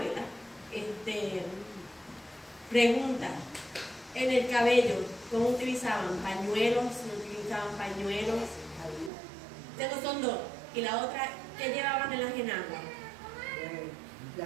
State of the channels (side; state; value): left; drops out; at 9.1 s